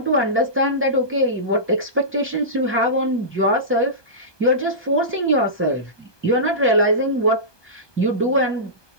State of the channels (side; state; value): right; late; 1.2 ms